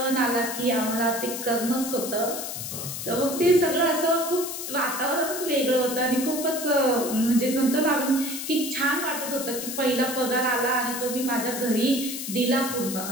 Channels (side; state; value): left; noise; hiss, 6 dB below the sound